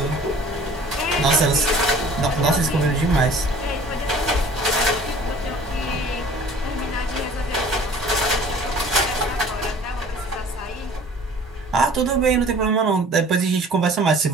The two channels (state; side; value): normal; both; correlation 0.49